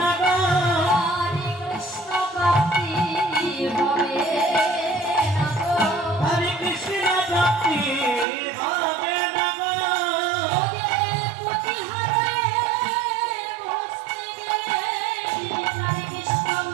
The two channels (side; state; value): left; drops out; at 8.2 s